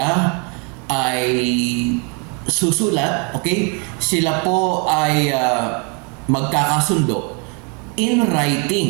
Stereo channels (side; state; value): left; quieter; 34.2 dB